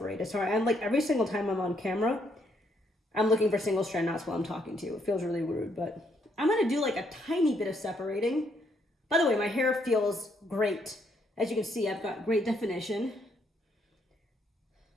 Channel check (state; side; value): normal; both; correlation 0.72